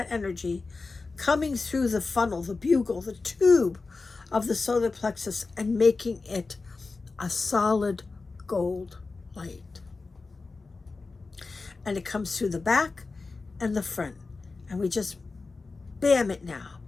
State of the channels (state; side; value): quieter; right; 3.9 dB